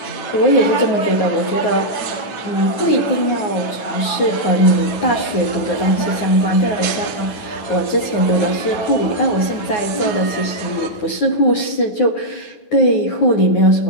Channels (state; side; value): late; right; 9.5 ms